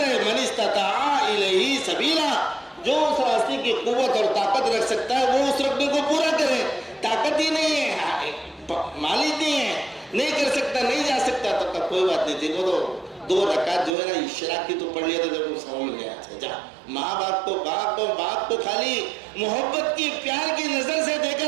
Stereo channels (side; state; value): left; drops out; at 14.0 s